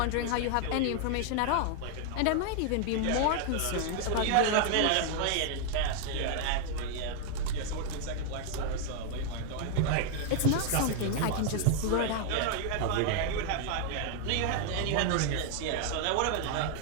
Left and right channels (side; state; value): both; different; correlation 0.00